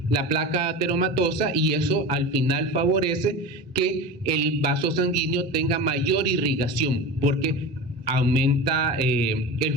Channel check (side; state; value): both; normal; correlation 0.29